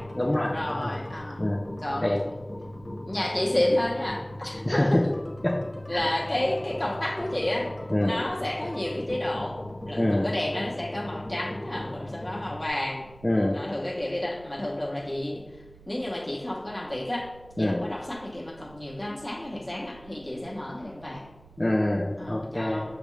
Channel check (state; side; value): noise; right; rumble, 23 dB below the sound